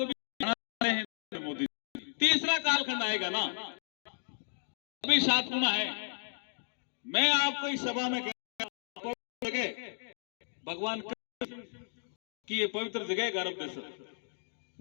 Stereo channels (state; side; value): silent; right; digital silence